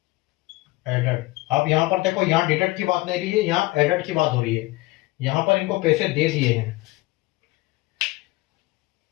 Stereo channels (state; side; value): quieter; right; 20.5 dB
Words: added. अब यहां पर देखो, यहां डिडक्ट की बात नहीं रही है, यहां एडेड की बात हो रही है। यहां पर इनको पैसे दे दिए हैं,